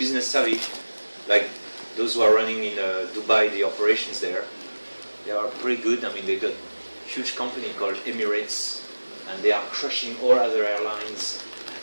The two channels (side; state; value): both; inverted; correlation -1.00